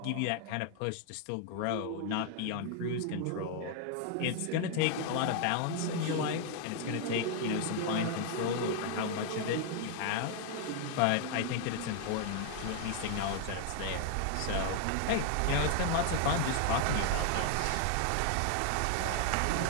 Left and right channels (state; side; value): different; both; correlation 0.00